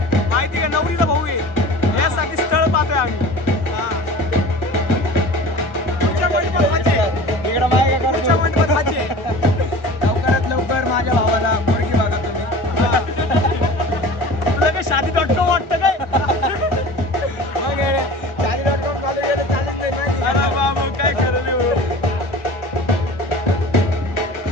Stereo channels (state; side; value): late; right; 1.4 ms